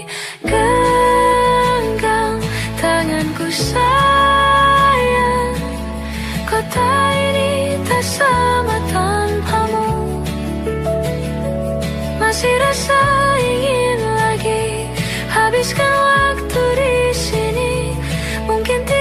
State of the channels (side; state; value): both; identical; correlation 1.00